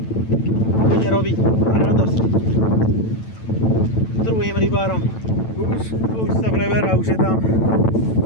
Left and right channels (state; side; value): late; right; 9.0 ms